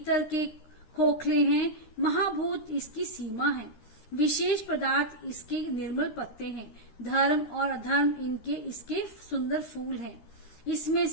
के खोखले हैं। महाभूत इसकी सीमा है। विशेष पदार्थ इसके निर्मल पत्ते हैं। धर्म और अधर्म इसके सुंदर फूल हैं। इसमें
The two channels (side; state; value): right; late; 13 ms